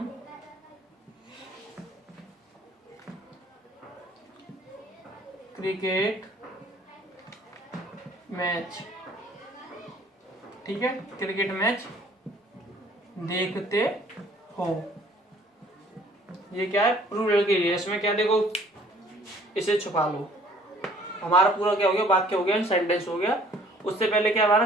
क्रिकेट मैच, ठीक है, क्रिकेट मैच देखते हो। ये क्या है प्लूरल के लिए। इसमें क्या देखो, इसे छुपा लो, हमारा पूरा क्या हो गया वाक्य हो गया, सेंटेंस हो गया। उससे पहले क्या हमारा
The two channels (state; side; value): normal; both; correlation 0.56